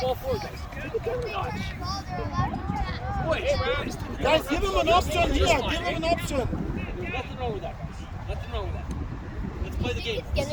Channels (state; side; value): identical; both; correlation 1.00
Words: ball forward, guys. Boys, Guys, give him an option here, give him an option. there's nothing wrong with that, guys. Nothing wrong with that. Let's play the game. It's